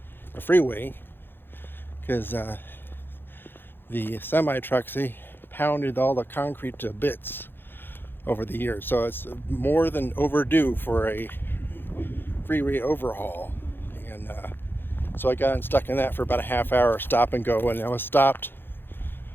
freeway because the semi trucks, they pounded all the concrete to bits over the years, so it's more than overdue for a freeway overhaul. And so I got stuck in that for about a half hour, stop and go, and I was stopped,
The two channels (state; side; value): late; right; 0.10 ms